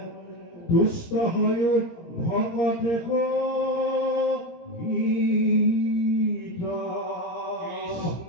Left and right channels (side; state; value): right; late; 17 ms